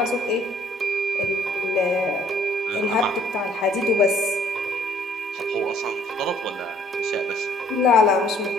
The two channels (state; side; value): normal; both; correlation 0.61